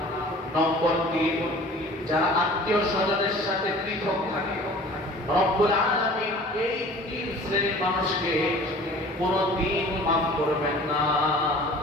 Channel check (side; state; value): both; normal; correlation 0.46